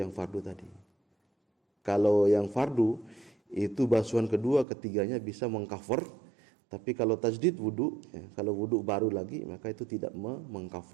fardu tadi. Kalau yang fardu itu basuhan kedua ketiganya bisa mengcover, tapi kalau tajdid wudu ya, kalau wudu baru lagi maka itu tidak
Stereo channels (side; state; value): left; drops out; at 4.7 s